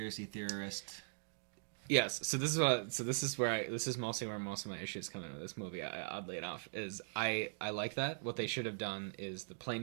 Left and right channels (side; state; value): left; silent; digital silence